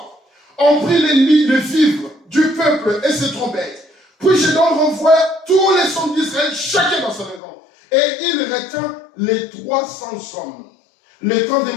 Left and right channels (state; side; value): drops out; right; at 7.4 s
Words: On prit les vivres du peuple et ses trompettes. Puis Gédéon renvoie tous les hommes d'Israël, chacun dans sa maison. Et il retint les 300 hommes. Les camps des